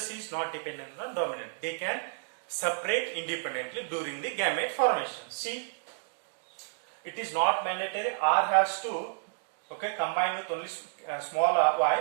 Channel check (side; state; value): left; silent; digital silence